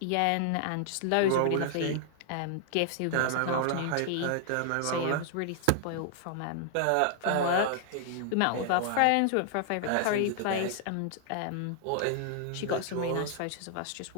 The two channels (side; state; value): both; different; correlation -0.01